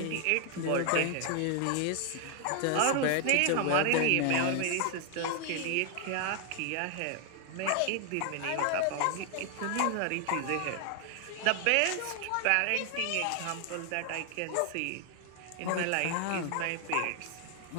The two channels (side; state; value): both; different; correlation 0.00